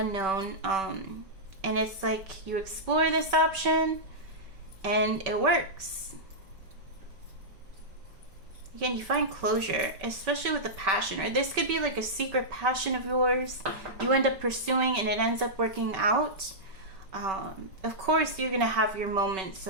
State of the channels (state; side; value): late; left; 5.2 ms